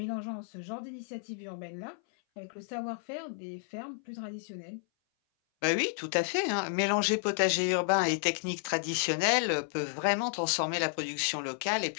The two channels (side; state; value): right; silent; 57 dB below the other